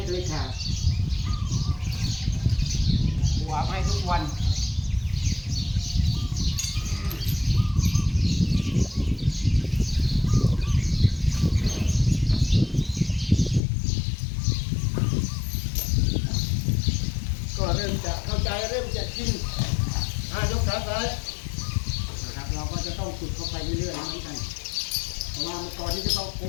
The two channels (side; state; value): right; drops out; at 13.6 s